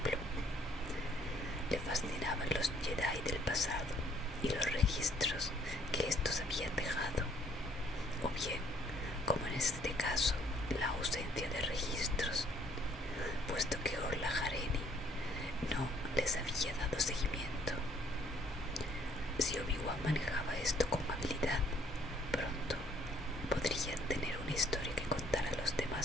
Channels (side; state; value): both; normal; correlation 0.63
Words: Le fascinaban los Jedi del pasado y los registros que estos habían dejado, o bien, como en este caso, la ausencia de registros, puesto que Orla Jareni no les había dado seguimiento. Si Obi-Wan manejaba esto con habilidad, pronto podrían tener una historia que contar a los